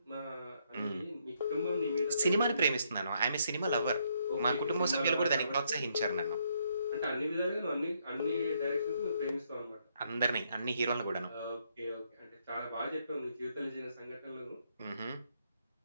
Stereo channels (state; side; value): inverted; both; correlation -0.73